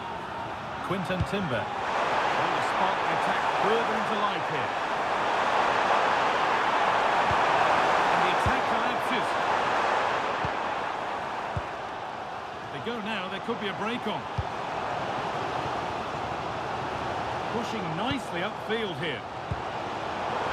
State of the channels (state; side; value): identical; both; correlation 1.00